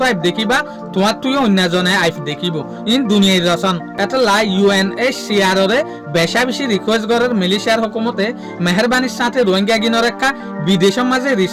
আইফ দেখিবা তোমার তুইও অন্যজনে আইফ দেখিব ইন দুনিয়ার রচন এটা লাই UNHCR রে বেশা বেশি রিকোয়েস্ট করার মালয়েশিয়ার হুকুমতে মেহরবানির সাথে রোহিঙ্গা গিনর একটা বিদেশের মাঝে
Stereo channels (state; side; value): identical; both; correlation 1.00